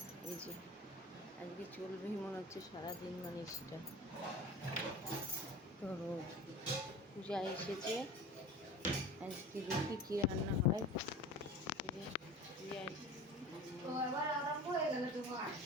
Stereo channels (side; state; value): both; normal; correlation 0.37